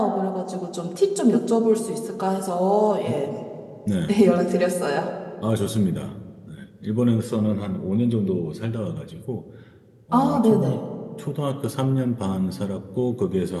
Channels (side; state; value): both; identical; correlation 1.00